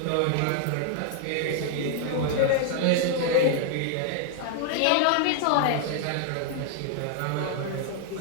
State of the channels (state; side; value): different; both; correlation 0.00